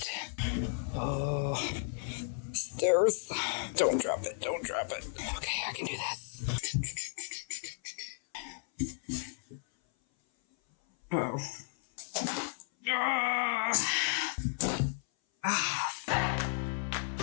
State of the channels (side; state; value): right; silent; 55 dB below the other